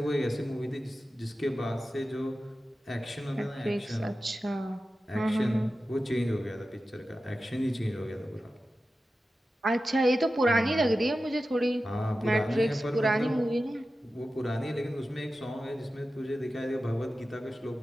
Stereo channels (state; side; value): normal; both; correlation 0.93